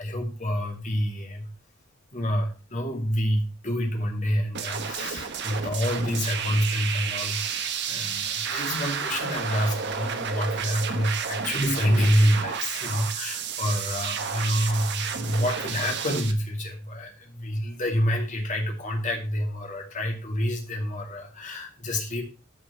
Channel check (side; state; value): both; normal; correlation 0.69